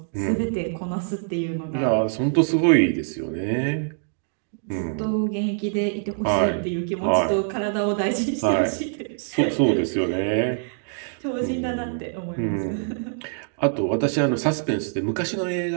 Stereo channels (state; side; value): silent; left; digital silence